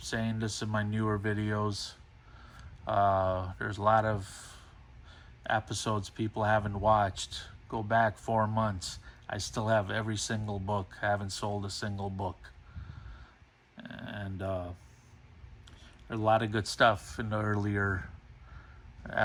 saying this in my newer videos. There's a lot of episodes people haven't watched. Go back 4 months. I still have every single book. I haven't sold a single book. And there's a lot of good stuff in the earlier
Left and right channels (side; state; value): both; identical; correlation 1.00